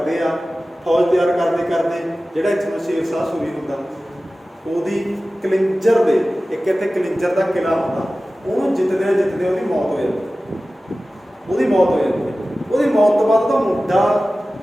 ਆ। ਫੌਜ ਤਿਆਰ ਕਰਦੇ ਜਿਹੜਾ ਇੱਥੋਂ ਸ਼ੇਰਸ਼ਾਹ ਸੂਰੀ ਹੁੰਦਾ, ਉਹਦੀ ਕਲਿੰਜਰ ਦੇ ਇੱਕ ਇੱਥੇ ਕਲਿੰਜਰ ਦਾ ਕਿਲ੍ਹਾ ਹੁੰਦਾ, ਉਹਨੂੰ ਜਿੱਤਦੇ ਉਹਦੀ ਮੌਤ ਹੋ ਜਾਂਦੀ। ਉਹਦੀ ਮੌਤ ਤੋਂ ਬਾਅਦ ਉਹਦਾ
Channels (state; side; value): normal; both; correlation 0.96